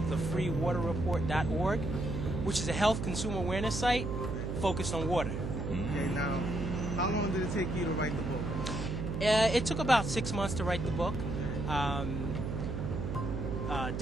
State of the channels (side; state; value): right; noise; hum, 3 dB below the sound